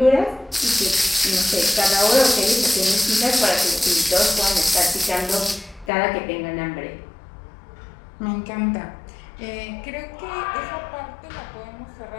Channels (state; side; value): drops out; right; at 5.9 s